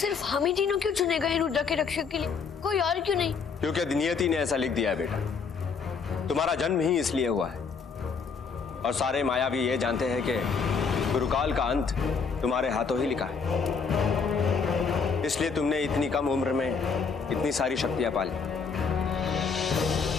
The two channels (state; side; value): quieter; right; 5.5 dB